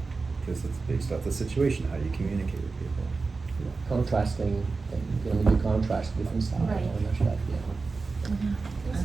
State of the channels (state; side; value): quieter; left; 4.1 dB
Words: because it's based off the situation, how you communicate with people. Contrasting, when you contrast different styles, Right. all that stuff, yeah. I